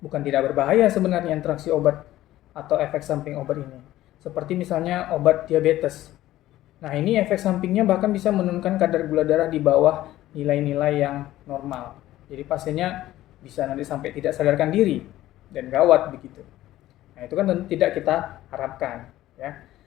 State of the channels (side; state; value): right; quieter; 14.8 dB